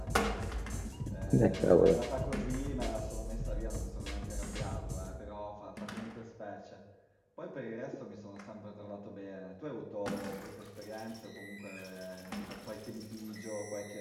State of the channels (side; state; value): both; identical; correlation 1.00